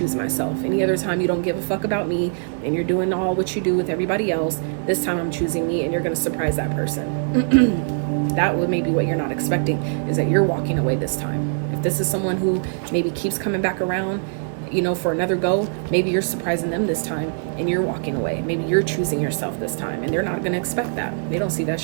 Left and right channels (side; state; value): left; silent; digital silence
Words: myself. Any other time, you don't give a fuck about me and you're doing all what you do with everybody else. This time, I'm choosing me, and you're going to surprise that person. That would maybe what you're not expecting, is that you're walking away this time. If this is someone who maybe keeps coming back around, you know, for another go, maybe you're surprising them this time and you're walking away. Maybe you're choosing yourself this time, and they're not going to expect that. They don't see that